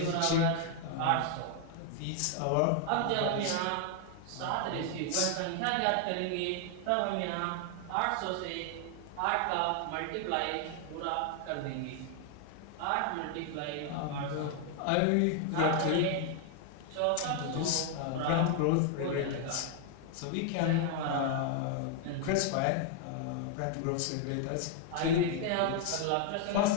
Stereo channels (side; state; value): both; different; correlation 0.00